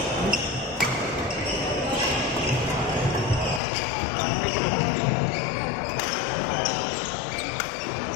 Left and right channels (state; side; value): drops out; right; at 3.6 s